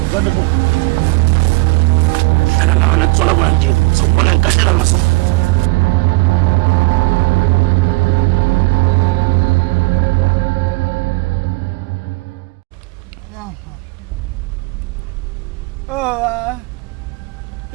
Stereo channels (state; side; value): quieter; left; 25.1 dB